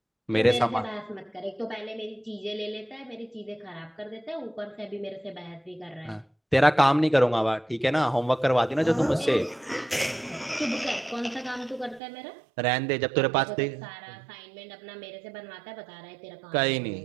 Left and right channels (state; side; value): drops out; left; at 12.0 s